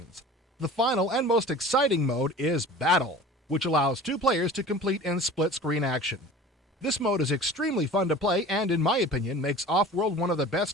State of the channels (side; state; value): both; normal; correlation 0.40